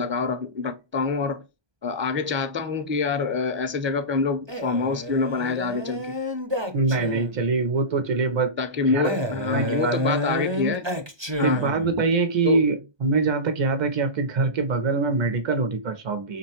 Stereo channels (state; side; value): late; left; 1.3 ms